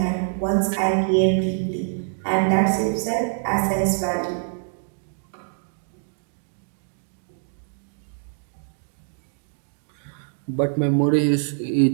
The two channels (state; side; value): silent; left; digital silence